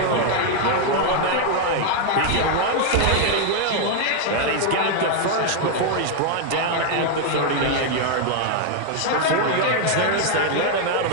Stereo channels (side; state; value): both; different; correlation 0.00